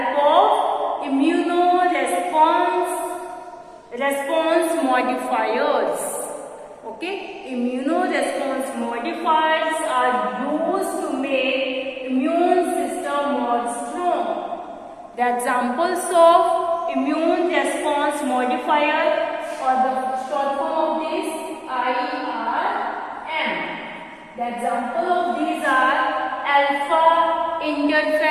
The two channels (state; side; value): identical; both; correlation 1.00